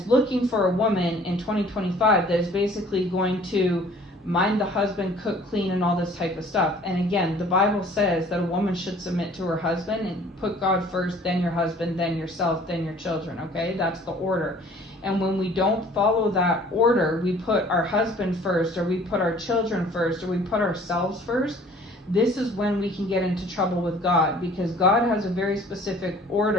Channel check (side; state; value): both; normal; correlation 0.53